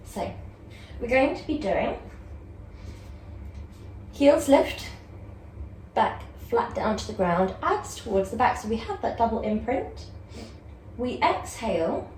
So we're going to be doing heels lift, back flat down to the ground, abs towards the back, so we have that double imprint. We exhale,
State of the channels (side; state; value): both; identical; correlation 1.00